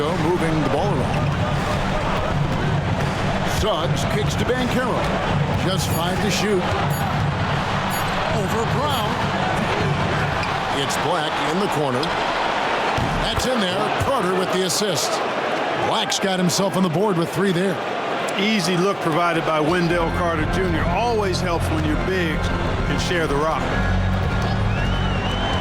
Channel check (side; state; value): both; identical; correlation 1.00